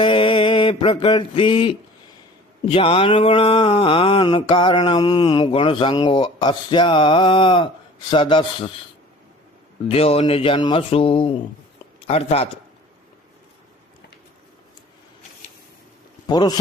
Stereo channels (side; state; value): both; normal; correlation 0.46